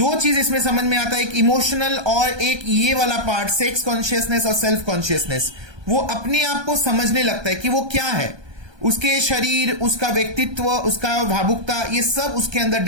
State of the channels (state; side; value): late; left; 1.2 ms